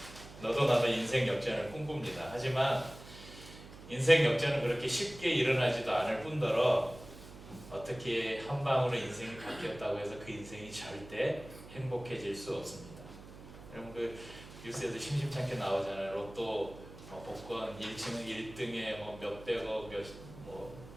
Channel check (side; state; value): right; noise; hum, 16 dB below the sound